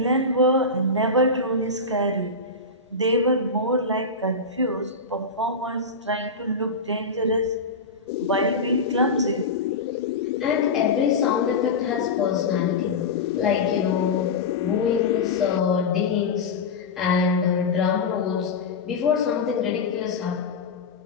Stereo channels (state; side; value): quieter; right; 3.5 dB